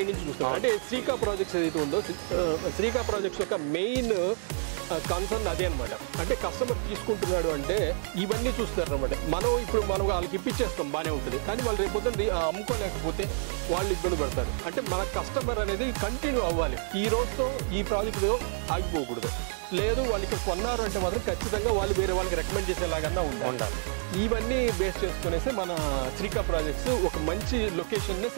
నుంచి చూస్తాం. అంటే శ్రీకా ప్రాజెక్ట్స్ ఏదైతే ఉందో, శ్రీకా ప్రాజెక్ట్స్ యొక్క మెయిన్ కన్సర్న్ అదే అనమాట. అంటే కస్టమర్ తీసుకుంటున్నాడు అంటే ఇవన్నీ చూస్తారు అనమాట. మనం వాళ్ళకి ఇప్పించేస్తాం, బాగానే ఉంటుంది. కానీ వాళ్ళు రేపొద్దున అమ్ముకోలేకపోతే వాళ్ళు ఇబ్బంది పడతారు. అంటే మన కస్టమర్ అనేది కంటిన్యూ అవ్వాలి. ఈ రోజుతో ఈ ప్రాజెక్టుతో ఆగిపోకూడదు. లేదు వాళ్ళు ఇక్కడ కొన్నారు అంటే మాత్రం ఖచ్చితంగా వాళ్ళు వేరే వాళ్ళకి రికమెండ్ చేసేలాగా ఉండాలి. ఇవన్నీ బేస్ చేసుకునేసి మన శ్రీకా ప్రాజెక్ట్స్ ఒక మంచి లొకేషన్నే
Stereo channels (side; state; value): left; silent; 59 dB below the other